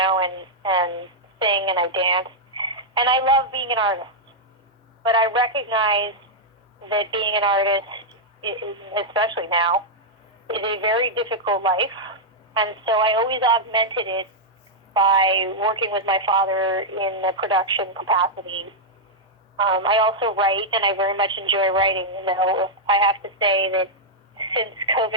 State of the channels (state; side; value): normal; both; correlation -0.05